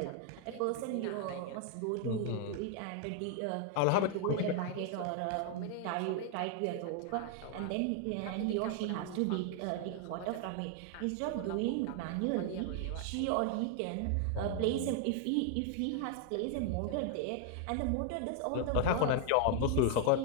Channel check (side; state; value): both; different; correlation 0.00